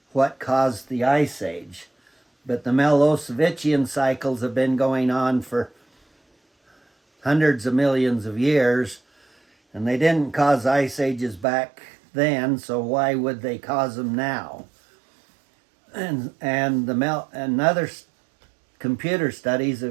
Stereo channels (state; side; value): drops out; left; at 11.5 s